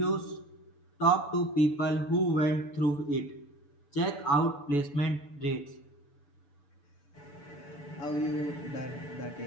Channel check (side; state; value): right; late; 6.9 ms